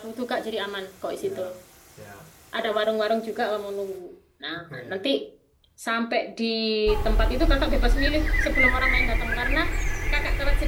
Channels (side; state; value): both; identical; correlation 1.00